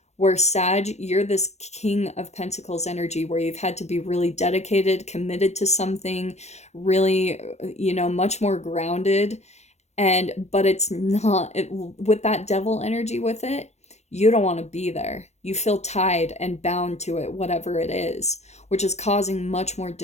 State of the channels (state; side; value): late; right; 0.32 ms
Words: Where Sag, you're this King of Pentacles energy where you've had to be really dedicated, committed to something, really, much more grounded. But it's not with that devil energy with it. You don't want to be there. You feel tied and bound to it, whatever it is, which is causing much more